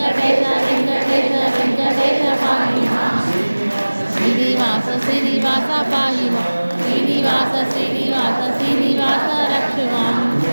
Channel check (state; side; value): inverted; both; correlation -1.00